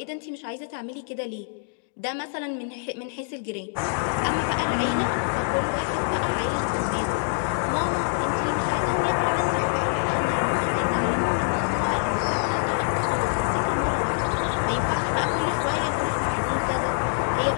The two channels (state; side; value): silent; right; digital silence